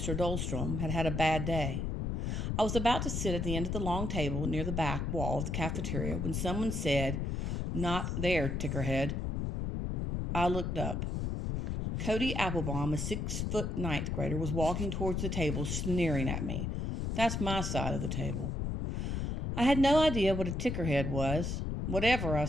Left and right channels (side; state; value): left; noise; rumble, 1 dB below the sound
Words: Dahlstrom had had a bad day. I was about to sit at the end of the long table near the back wall of the cafeteria when someone said, "Not there, tickerhead." I looked up. Cody Applebaum, a 6-foot ninth grader, was walking towards the table, sneering at me. That's my side of the table. I had no idea what a tickerhead was. "Whatever," I